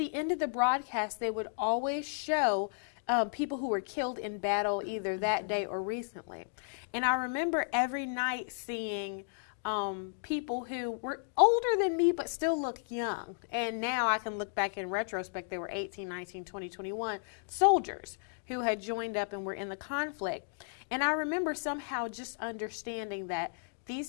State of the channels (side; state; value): right; silent; digital silence